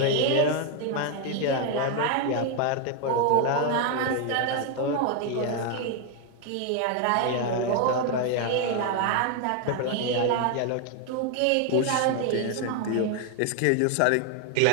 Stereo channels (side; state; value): both; different; correlation 0.01